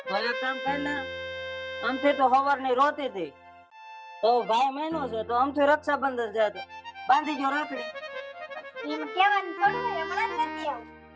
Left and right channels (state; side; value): identical; both; correlation 1.00